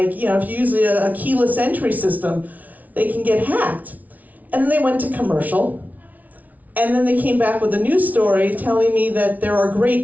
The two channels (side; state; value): left; late; 0.075 ms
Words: you know, if you use a keyless entry system, they can get hacked. And then they went to commercial, and then they came back with a news story telling me that there are